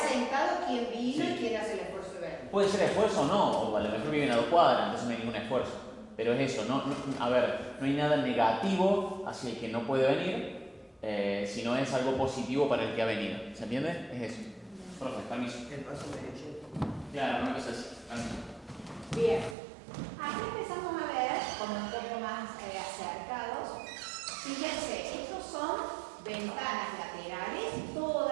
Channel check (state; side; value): drops out; left; at 19.6 s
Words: quién vino Sí. y quién hace el esfuerzo de venir. Puede ser esfuerzo o no, o a lo mejor viven a 2 cuadras, entonces no hay ningún esfuerzo. Pero es eso, a ver, no hay nada negativo hacia el que no puede venir, sino es algo positivo para el que ha venido. ¿Se entiende? Es eso. Profe, permiso. El paso derecho. Claro, una cosa así. Bien. Aquí empezamos a ver, como un poco más acercados. Fíjense, estos son ventanas laterales,